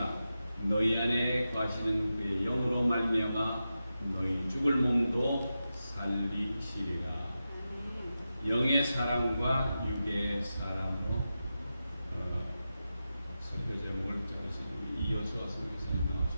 너희 안에 거하시는 그의 영으로 말미암아 너희 죽을 몸도 살리시리라. 영의 사람과 육의 사람으로 설교 제목을 적으신 우리 이효수아 선교사님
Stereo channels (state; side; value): inverted; both; correlation -0.91